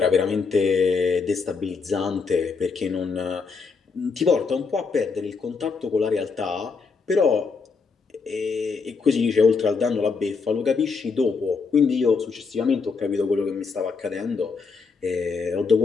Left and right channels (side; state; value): right; quieter; 4.8 dB